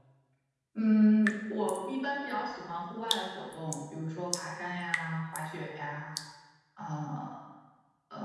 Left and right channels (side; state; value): both; identical; correlation 1.00